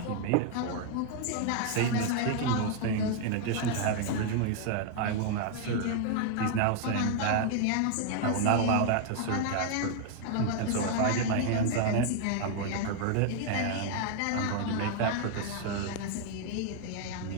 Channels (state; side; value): different; both; correlation 0.00